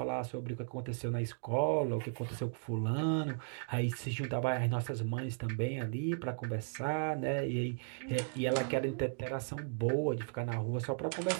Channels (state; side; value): silent; left; digital silence